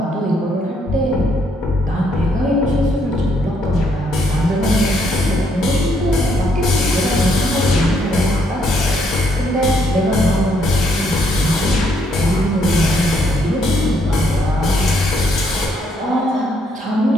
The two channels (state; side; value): normal; both; correlation 0.72